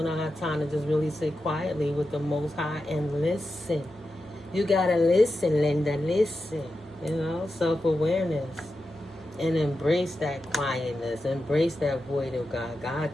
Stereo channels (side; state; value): both; normal; correlation 0.90